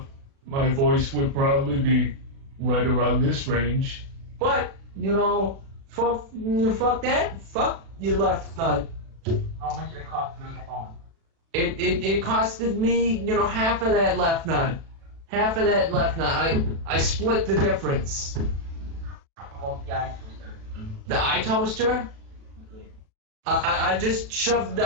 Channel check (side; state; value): left; late; 36 ms